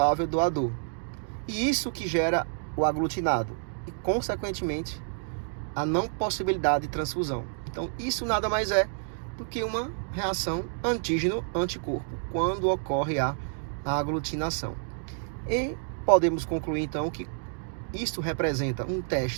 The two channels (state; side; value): silent; left; digital silence